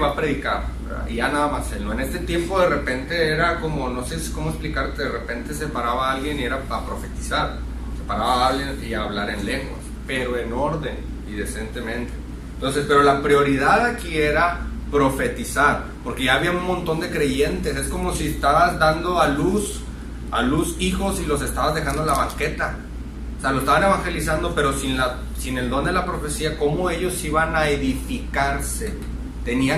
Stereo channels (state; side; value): identical; both; correlation 1.00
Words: a predicar, ¿verdad? Y ya nada más él, ¿no? En este tiempo de repente era como, no sé cómo explicarte, de repente se paraba alguien y era para profetizar, se paraba alguien y a hablar en lenguas, pero en orden y decentemente. Entonces, pero la prioridad aquí era profetizar, porque ya había un montón de creyentes. Es como si estabas dando a luz hijos y los estabas dejando en la banqueta. O sea, lo estaban evangelizando, pero sin el don de la profecía, ¿cómo ellos iban a edificarse?